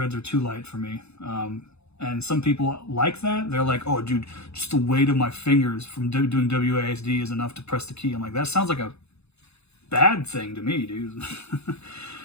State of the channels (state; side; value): late; right; 0.80 ms